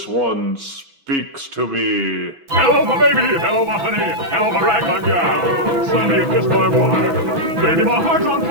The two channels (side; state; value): left; late; 6.0 ms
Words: one speaks to me. Hello, my baby. Hello, my honey. Hello, my ragtime gal. Suddenly you kissed my wife. Baby, my heart's on